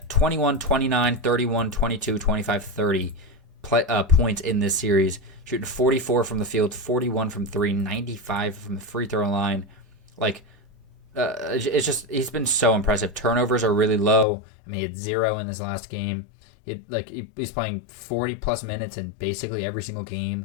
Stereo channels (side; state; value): right; drops out; at 14.2 s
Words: 21, 29, 31, 22, 25, 30 points in this series. Shooting 44 from the field, 41 from 3, 95 from the free throw line. It's just, he's been so impressive. Turnovers are really low. I mean, he had 0 in this last game. He's playing 40 plus minutes in basically every single